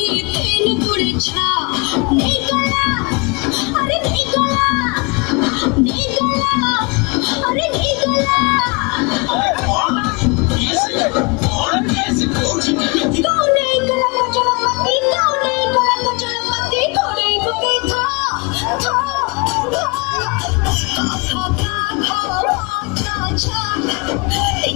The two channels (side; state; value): right; quieter; 29.8 dB